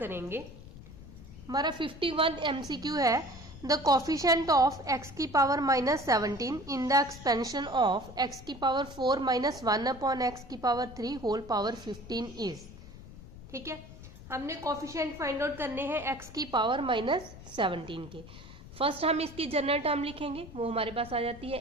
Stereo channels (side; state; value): left; noise; rumble, 16 dB below the sound